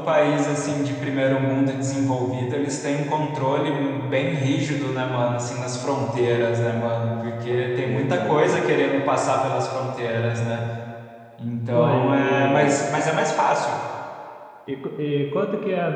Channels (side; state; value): both; identical; correlation 1.00